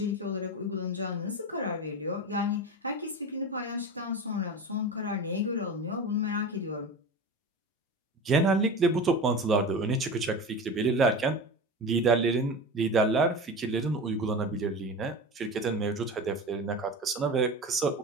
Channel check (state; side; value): normal; both; correlation 0.28